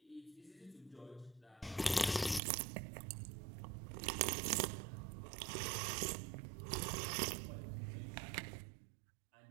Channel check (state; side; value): drops out; left; at 2.4 s